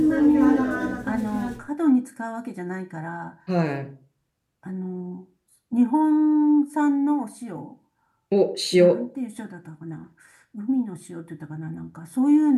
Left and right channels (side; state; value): both; identical; correlation 1.00